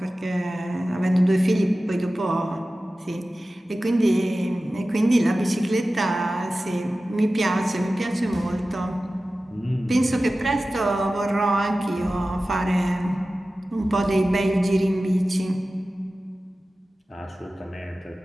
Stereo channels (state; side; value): normal; both; correlation 0.95